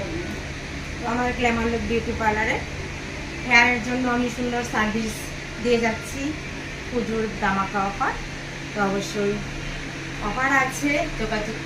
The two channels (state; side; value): identical; both; correlation 1.00